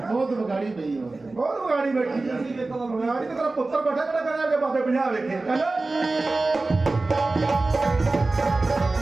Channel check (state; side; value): quieter; left; 3.3 dB